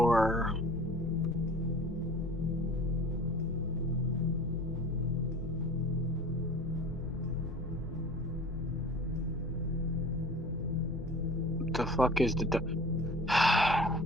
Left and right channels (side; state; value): both; normal; correlation 0.43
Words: the fuck is the